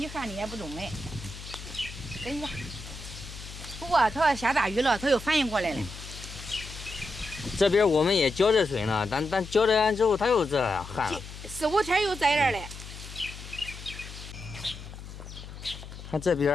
旱的也不中嘞。跟你讲，不过它要下大雨了，它又反应过来了。这边我们也浇着水呢，但浇着完之后它又这样旱了。4、5天又在这儿嘞。看这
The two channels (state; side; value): noise; left; hum, 13 dB below the sound